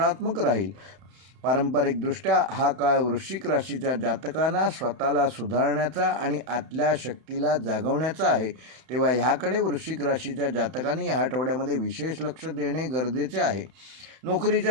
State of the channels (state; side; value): late; left; 31 ms